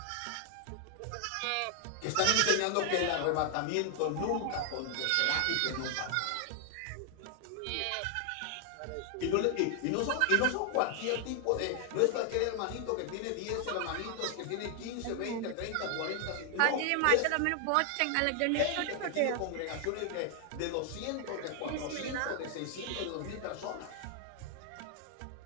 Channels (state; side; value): different; both; correlation 0.00